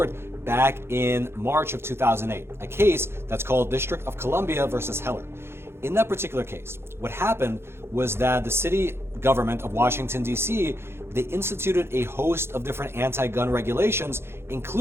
back in March of 2008, a case that's called District of Columbia versus Heller. In that particular case, what happened was that the city government of Washington, D.C., they instituted a host of different anti-gun regulations,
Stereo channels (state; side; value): late; left; 0.12 ms